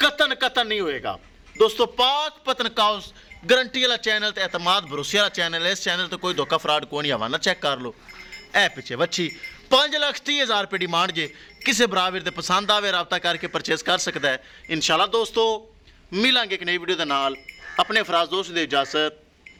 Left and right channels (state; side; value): identical; both; correlation 1.00